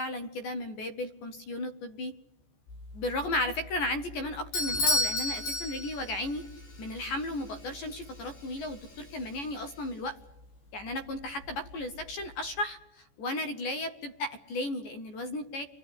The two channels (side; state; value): right; late; 14 ms